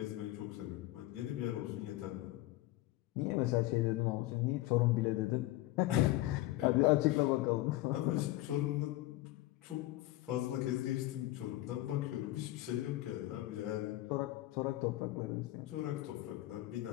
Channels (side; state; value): right; quieter; 17.1 dB